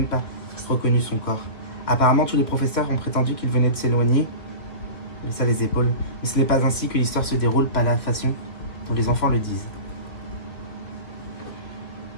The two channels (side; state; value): right; late; 2.7 ms